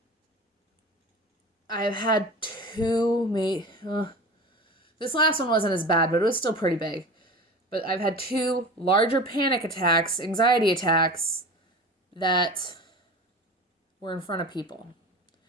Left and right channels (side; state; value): both; normal; correlation 0.34